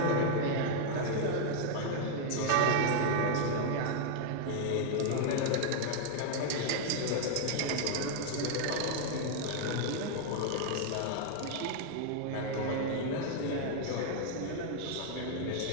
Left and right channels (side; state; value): both; different; correlation 0.00